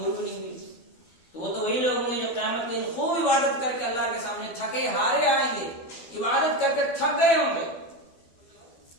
بھی نہیں ہوئی، تو وہ تو وہی لوگ ہوں گے جو قیامت کے دن خوب عبادت کر کے اللہ کے سامنے تھکے ہارے آئیں گے، عبادت کر کے تھک گئے ہوں گے،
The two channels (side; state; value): right; late; 12 ms